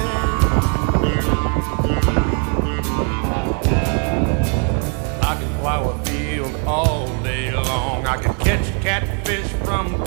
I can plow a field all day long. I can catch catfish from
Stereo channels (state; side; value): quieter; left; 38.2 dB